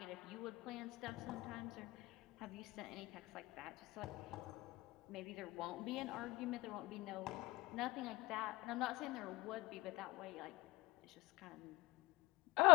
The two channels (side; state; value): right; quieter; 21.7 dB